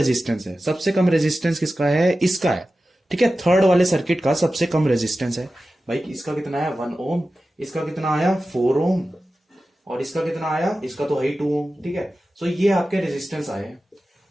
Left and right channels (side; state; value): both; normal; correlation 0.94